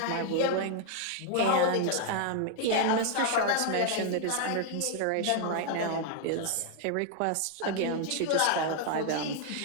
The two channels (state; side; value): different; both; correlation 0.00